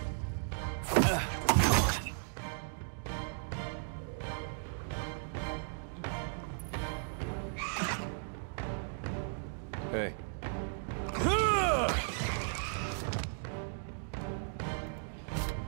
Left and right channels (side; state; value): left; silent; digital silence